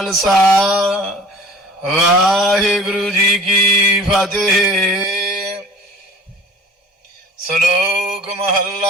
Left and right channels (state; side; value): normal; both; correlation 0.45